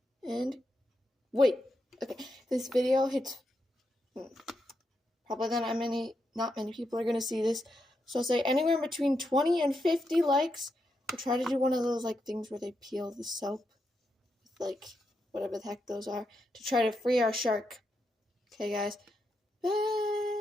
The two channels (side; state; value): both; normal; correlation 0.84